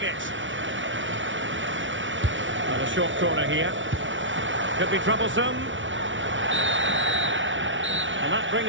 it. And a short corner here. Could be troublesome. And that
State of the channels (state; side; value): late; left; 0.56 ms